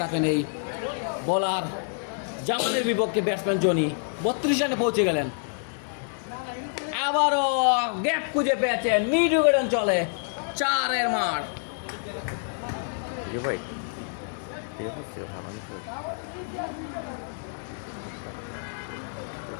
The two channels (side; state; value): right; silent; digital silence